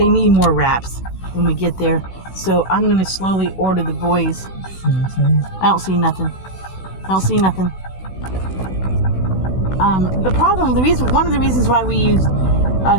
need more wraps when we get there. So I'm going to slowly order the boys. I don't see nothing. One of the reasons why we used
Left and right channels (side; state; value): right; late; 16 ms